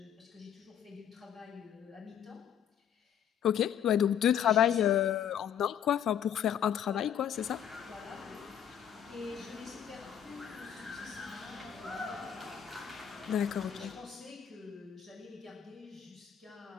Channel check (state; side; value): quieter; right; 9.2 dB